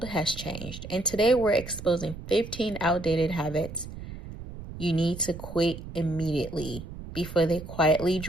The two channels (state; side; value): noise; right; rumble, 11 dB below the sound